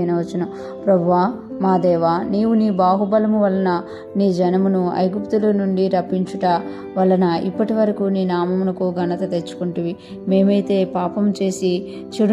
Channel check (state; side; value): identical; both; correlation 1.00